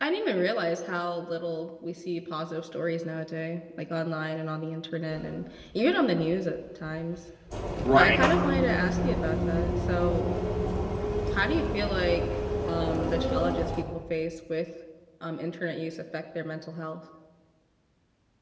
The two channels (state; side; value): identical; both; correlation 1.00